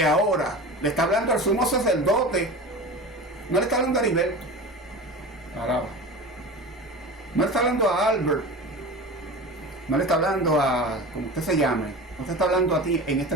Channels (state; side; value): normal; both; correlation 0.32